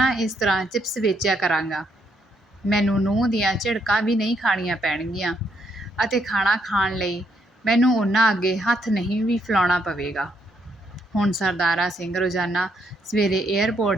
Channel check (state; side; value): normal; both; correlation 0.74